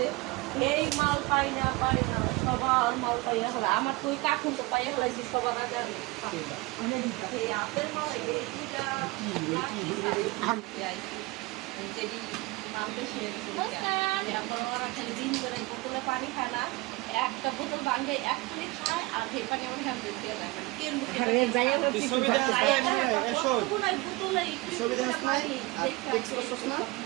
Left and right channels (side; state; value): left; quieter; 22.5 dB